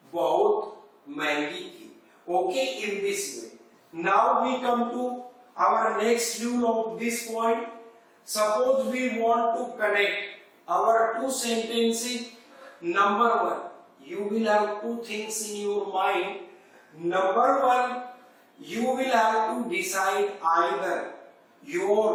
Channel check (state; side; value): identical; both; correlation 1.00